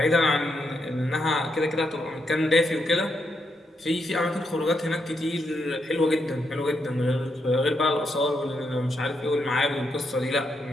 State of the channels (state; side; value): normal; both; correlation 0.80